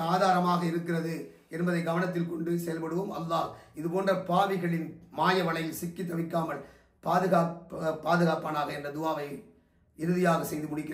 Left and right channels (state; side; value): identical; both; correlation 1.00